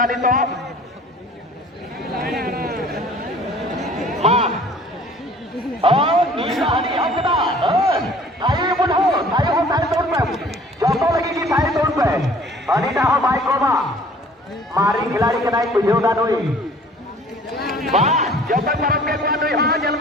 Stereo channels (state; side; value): normal; both; correlation 0.51